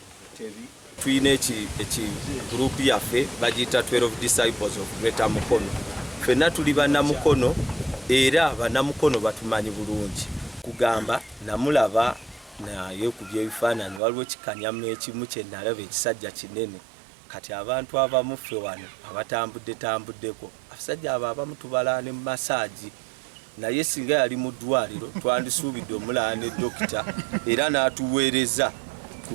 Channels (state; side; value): drops out; left; at 14.0 s